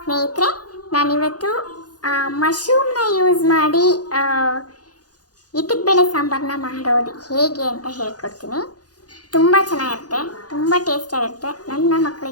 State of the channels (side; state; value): right; late; 0.68 ms